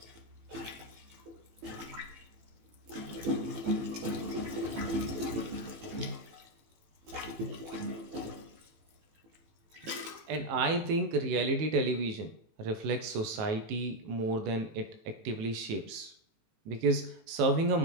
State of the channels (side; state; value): left; late; 18 ms